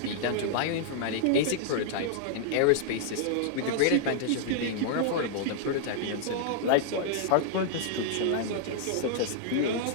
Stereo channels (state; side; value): different; both; correlation -0.01